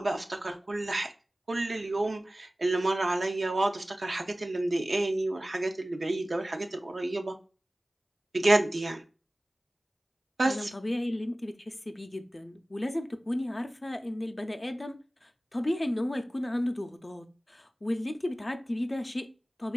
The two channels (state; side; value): normal; both; correlation 0.97